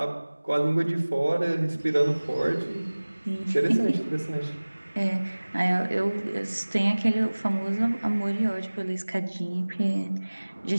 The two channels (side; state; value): both; inverted; correlation -1.00